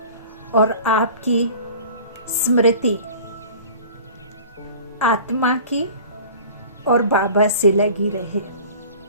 और आपकी स्मृति आत्मा की और बाबा से लगी रहे।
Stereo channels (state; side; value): inverted; both; correlation -0.42